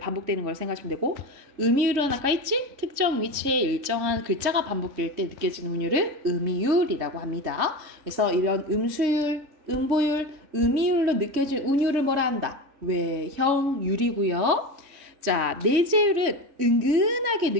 걸 생각하시면 되고 음이율은 아까 있지? 특정 위치에 일정한 글자가 반복될 때 느껴지는 운율을 음이율이라고 합니다. 그래서 이런 음수율, 음보율, 음이율로 느껴진 운율을 뭐라 한다? 외형율이고요. 자, 내재율은 은근하게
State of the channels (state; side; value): late; left; 3.5 ms